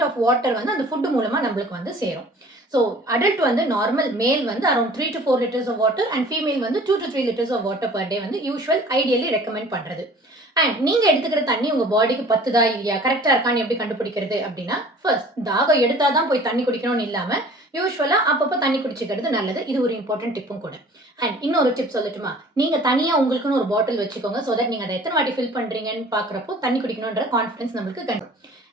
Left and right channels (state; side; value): normal; both; correlation 0.48